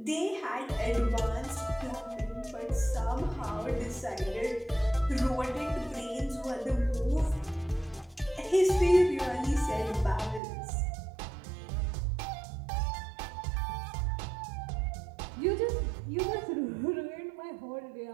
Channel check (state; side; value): drops out; left; at 10.4 s